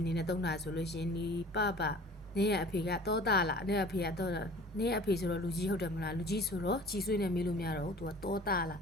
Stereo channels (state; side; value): normal; both; correlation 0.45